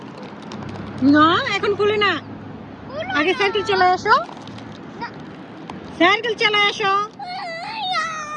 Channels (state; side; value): identical; both; correlation 1.00